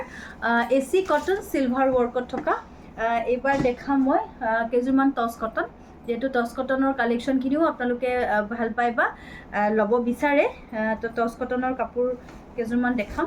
AC কটন চিলভাৰ ৱৰ্কত থকা। এইবাৰ দেখাম মই কেইযোৰমান টচ কটন, যিহেতু টচ কটনৰ কালেকশ্যনখিনিও আপোনালোকে ভাল পায় বা ল'ব বিচাৰে। তো টচ কটনৰ কাপোৰ কেইযোৰমান দেখাম।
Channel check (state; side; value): identical; both; correlation 1.00